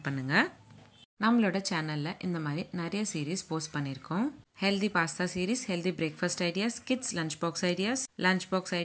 பண்ணுங்கள். நம்மளோட சேனலில் இந்த மாதிரி நிறைய சீரீஸ் போஸ்ட் பண்ணியிருக்கோம். Healthy pasta series, healthy breakfast ideas, kids lunch box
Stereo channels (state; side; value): identical; both; correlation 1.00